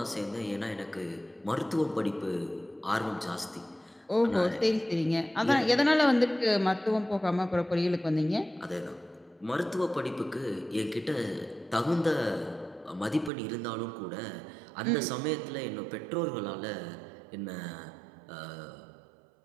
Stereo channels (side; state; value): left; drops out; at 13.3 s